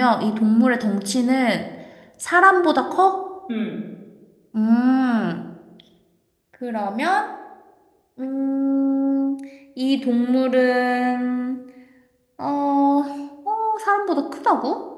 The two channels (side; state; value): both; identical; correlation 1.00